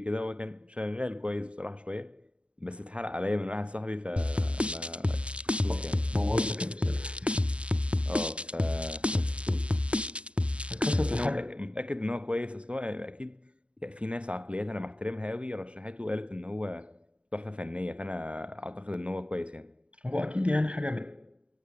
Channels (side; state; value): left; late; 0.059 ms